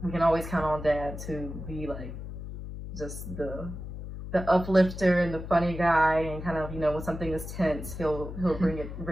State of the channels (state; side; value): noise; left; hum, 9 dB below the sound